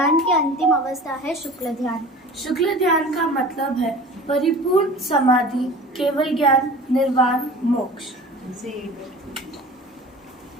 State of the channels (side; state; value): both; normal; correlation 0.41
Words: की अंतिम अवस्था है शुक्ल ध्यान। शुक्ल ध्यान का मतलब है परिपूर्ण समाधि, केवल ज्ञान, निर्वाण, मोक्ष।